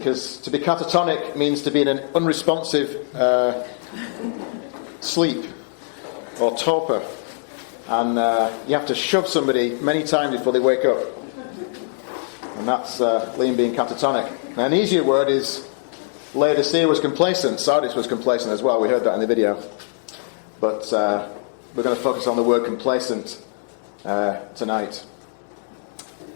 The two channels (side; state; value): right; silent; digital silence